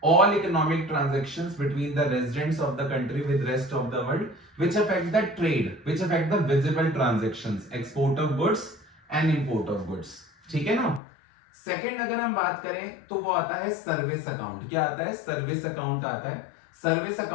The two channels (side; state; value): right; drops out; at 11.0 s